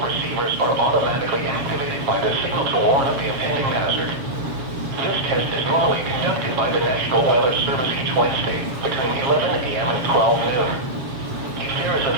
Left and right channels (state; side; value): late; left; 7.3 ms